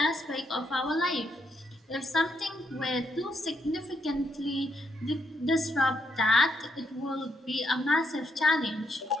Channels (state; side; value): normal; both; correlation 0.77